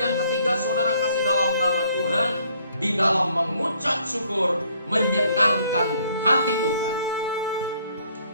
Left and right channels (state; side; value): inverted; both; correlation -0.64